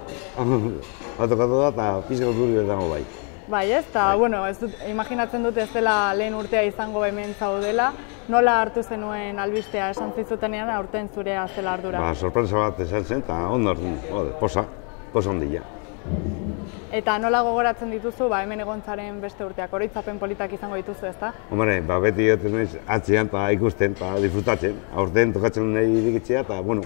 batokatu da eta pizka urduri bezango bai. Bai ez, eta bueno, imaginatzen dut ez dela lehen urtea izango hemen zaudela. Nola hartu zenuen albistea esan zizutenean aurten zurea zela ardura? Sorpresa bat esan zen eta ondo posa ondila. Eta nola gogoratzen dituzu hemen egon zaren beste urteak, oroitzapen politak izango dituzu, ezta? Hombre, beti egoten naiz atzean eta ikusten eta disfrutatzen. Aurten tokatzen nahi irikitzea eta,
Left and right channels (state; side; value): quieter; right; 38.5 dB